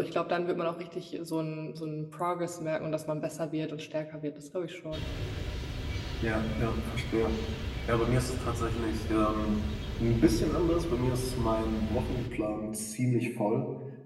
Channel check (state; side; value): identical; both; correlation 1.00